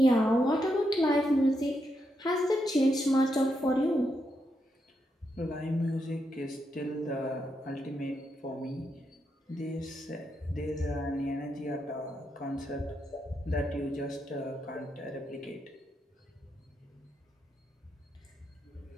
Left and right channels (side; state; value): both; normal; correlation 0.82